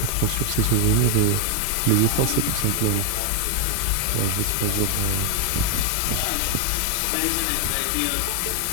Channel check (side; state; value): both; different; correlation 0.00